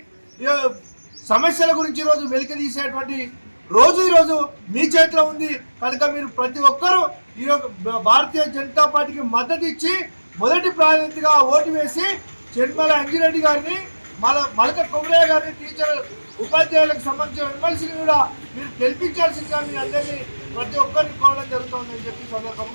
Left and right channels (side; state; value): both; inverted; correlation -1.00